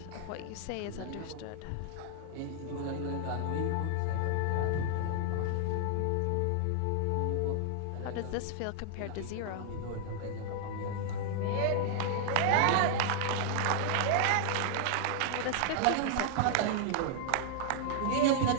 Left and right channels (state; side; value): different; both; correlation 0.00